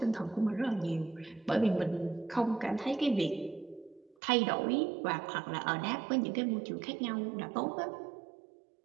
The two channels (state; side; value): drops out; left; at 4.2 s